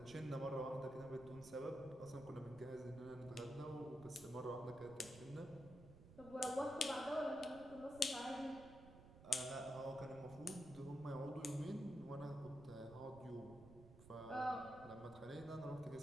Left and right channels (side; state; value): right; noise; rumble, 16 dB below the sound